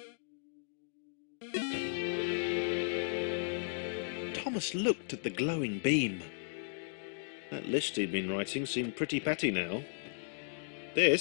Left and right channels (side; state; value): right; silent; digital silence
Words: Thomas looked at the glowing beam. That list he'd been writing seemed pretty petty now.